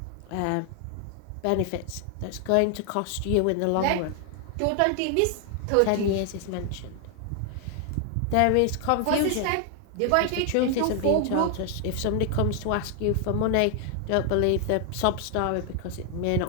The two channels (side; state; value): both; different; correlation 0.00